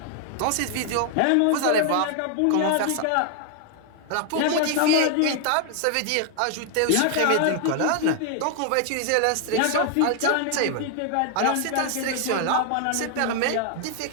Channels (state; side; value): different; both; correlation 0.00